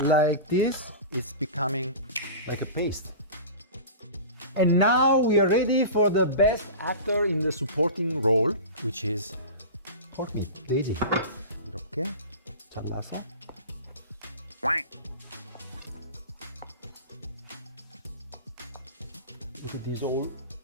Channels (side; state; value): both; inverted; correlation -0.32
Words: like this, it's becoming like a paste. And now we are ready for the best actor in the supporting role, which is pork meat, 돼지. 이렇게 잘라서. Look at this all